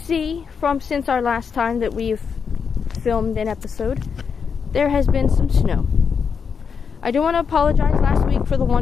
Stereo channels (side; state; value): right; quieter; 6.2 dB